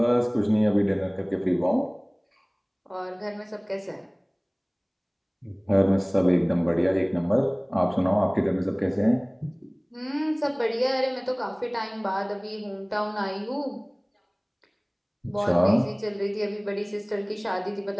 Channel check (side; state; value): both; identical; correlation 1.00